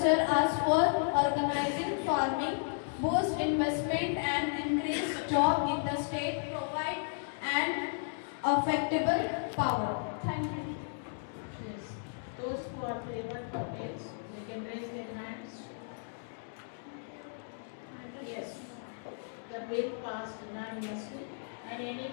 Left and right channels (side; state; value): right; silent; digital silence